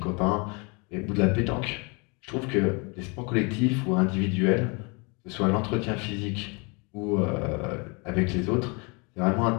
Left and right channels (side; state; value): right; quieter; 31.2 dB